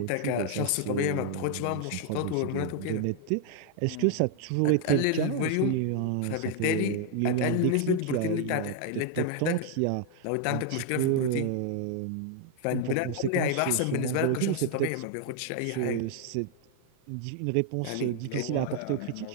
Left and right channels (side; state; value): both; different; correlation 0.00